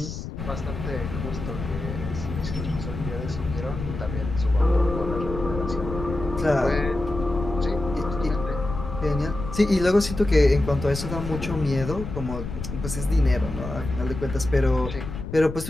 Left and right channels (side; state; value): left; noise; rumble, 7 dB below the sound